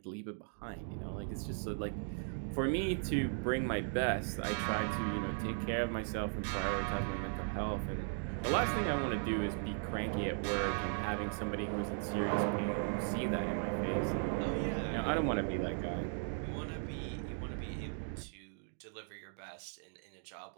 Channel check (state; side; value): silent; left; 53 dB below the other